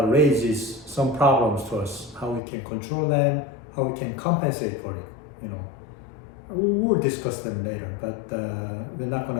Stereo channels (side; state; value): right; drops out; at 2.4 s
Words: raises some problems to us, how we can control them, how we can compensate for it. We'll discuss them later, but we're not going